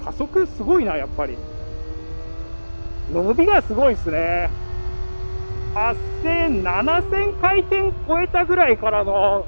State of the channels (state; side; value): inverted; both; correlation -1.00